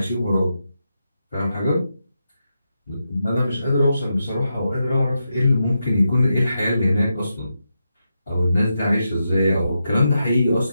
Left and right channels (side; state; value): both; inverted; correlation -0.86